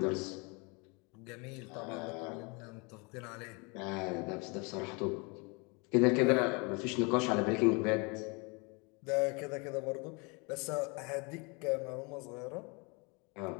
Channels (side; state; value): right; quieter; 30.4 dB